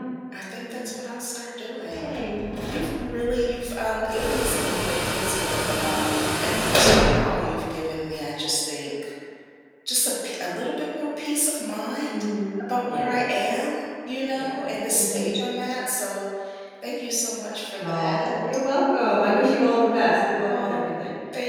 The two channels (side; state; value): both; identical; correlation 1.00